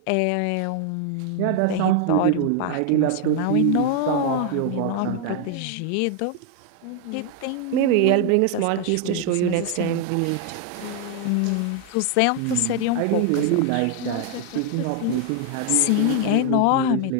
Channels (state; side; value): different; both; correlation 0.00